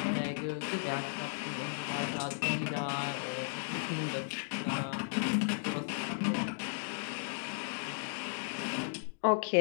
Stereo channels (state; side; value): silent; right; digital silence